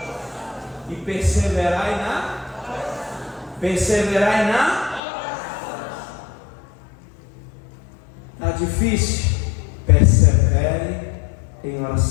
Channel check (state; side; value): drops out; right; at 5.0 s